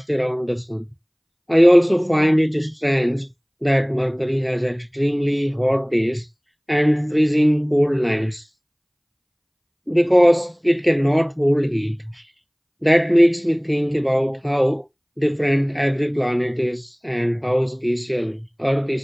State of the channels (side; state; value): both; identical; correlation 1.00